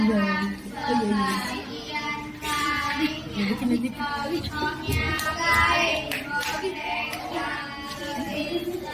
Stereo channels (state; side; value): identical; both; correlation 1.00